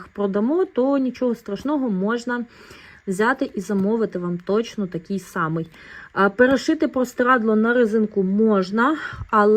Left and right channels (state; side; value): identical; both; correlation 1.00